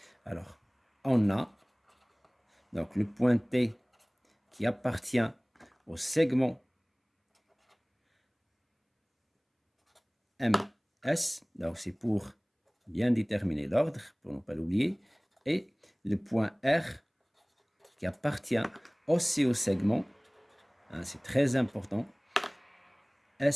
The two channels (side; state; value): both; identical; correlation 1.00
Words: Alors, on a donc le point T qui appartient au segment MS, donc c'est pour bien déterminer l'ordre, pour ne pas l'oublier, et le point R qui appartient aussi au segment, hein, c'est très important,